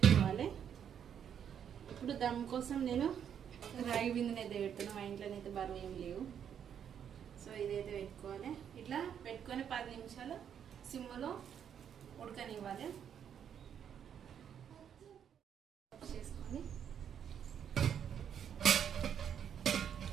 ఇప్పుడు దమ్ కోసం నేను రాగి బిందెనైతే పెడుతున్నాను. మా ఇంట్లోనైతే బరువు ఏం లేవు. సో ఇదైతే పెట్టుకోవాలి. ఇట్లా పెట్టుకొని 10 నిమిషాలు సిమ్లో ఉడకనివ్వాలి. చేసుకొని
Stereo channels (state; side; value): quieter; left; 8.6 dB